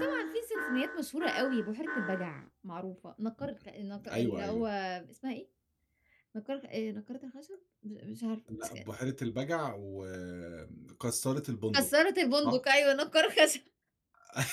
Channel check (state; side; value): identical; both; correlation 1.00